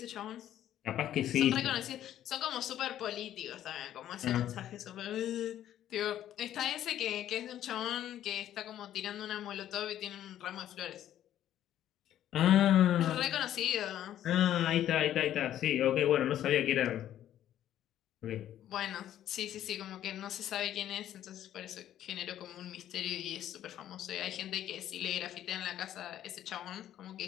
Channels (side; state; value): right; quieter; 11.7 dB